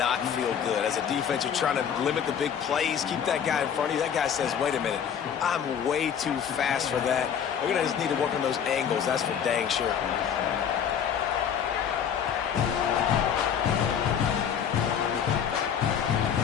feel good. As a defense, you're trying to limit the big plays, keep that guy in front of you. That guy says, wait a minute, I'm way too fast for that. We're going to just need to work on those angles. That's for dang sure.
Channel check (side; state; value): right; quieter; 8.1 dB